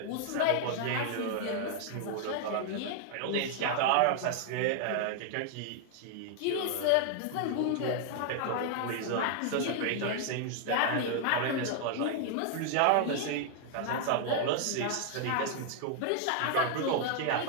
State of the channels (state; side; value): different; both; correlation 0.00